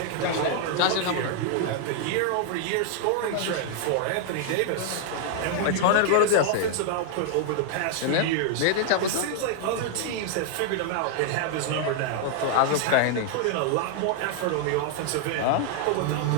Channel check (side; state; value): both; different; correlation 0.00